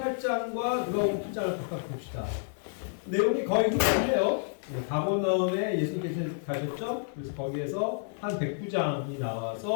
누가복음 7장을 각각 봅시다. 내용이 거의 흡사해요. 가버나움에 예수님께서 가셨죠? 그래서 거기에서 한 백부장이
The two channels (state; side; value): silent; right; 58 dB below the other